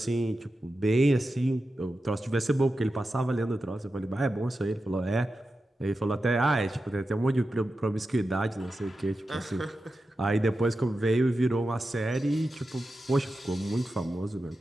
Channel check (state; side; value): normal; both; correlation 0.91